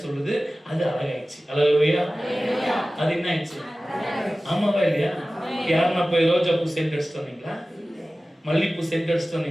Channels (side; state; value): both; normal; correlation 0.96